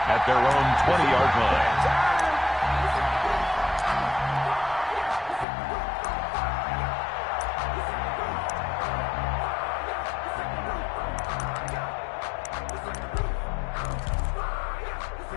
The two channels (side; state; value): right; drops out; at 5.5 s